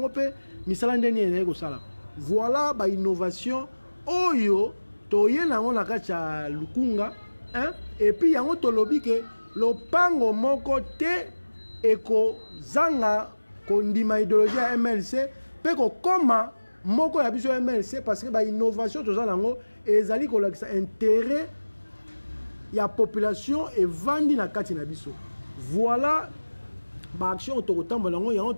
pe misala ndeni ene ko sala voilà ba innovation oyo toye na on la kacha Lukunga hein et puis yango to lobi ke lopango moko te eko zanga ko ndima idéologie ya MLC pe ko koma moko ya biso MLC parce que ba innovation to za nango ezali ko lakisa intérêt ya population et vandi na kati na biso voilà ba action to kotambola ngo yango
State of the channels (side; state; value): both; inverted; correlation -1.00